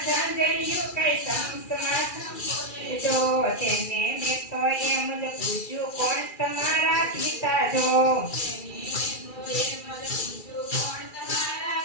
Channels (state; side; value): late; right; 2.3 ms